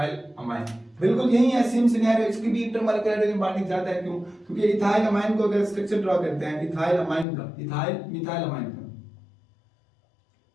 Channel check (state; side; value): drops out; right; at 7.2 s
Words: amine. बिल्कुल यही है, सेम सिनेरियो, इसकी भी इंटरमॉलिक्यूलर हाइड्रोजन बॉन्डिंग ज्यादा है। क्यों, क्योंकि इथाइल अमाइन को अगर स्ट्रक्चर ड्रॉ करते हैं इथाइल अमाइन का, इथाइल मिथाइल अमाइन का,